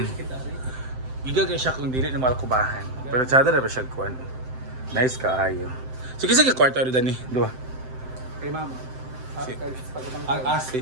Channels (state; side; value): late; left; 7.7 ms